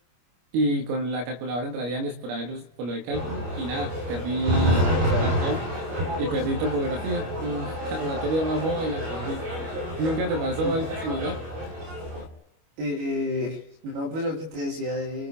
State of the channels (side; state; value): left; late; 25 ms